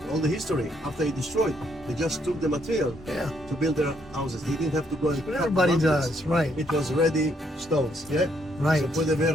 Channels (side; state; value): both; normal; correlation 0.72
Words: all the history, after it destroyed, they just took the material to build their houses. They didn't have to go and cut Everybody mountains. does, right? It was ready stones, yeah? Right. Se puede